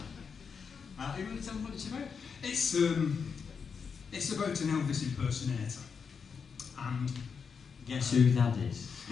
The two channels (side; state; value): right; quieter; 6.0 dB